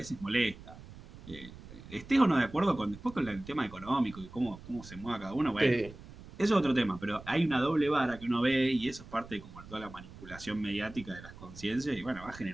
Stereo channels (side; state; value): right; noise; rumble, 17 dB below the sound